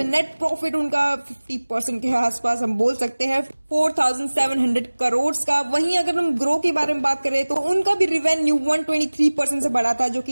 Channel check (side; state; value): both; inverted; correlation -1.00